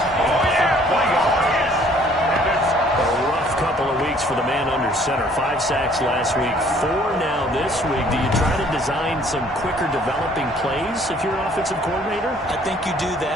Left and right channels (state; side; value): normal; both; correlation 0.59